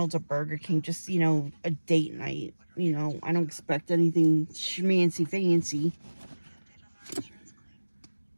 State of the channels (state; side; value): inverted; both; correlation -1.00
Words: or Burger King, just, you know, a date night. You know, I don't expect anything schmancy fancy.